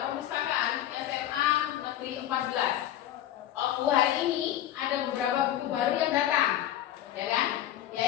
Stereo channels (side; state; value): right; quieter; 12.2 dB